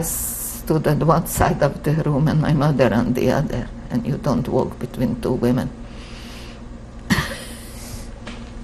stood at one side of the room and my mother on the other, and you don't walk between two women.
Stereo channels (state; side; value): identical; both; correlation 1.00